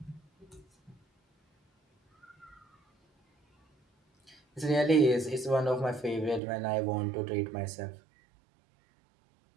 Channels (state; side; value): drops out; left; at 6.4 s